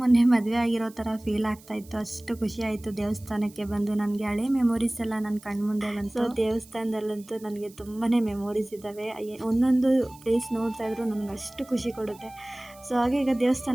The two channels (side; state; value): right; noise; hiss, 24 dB below the sound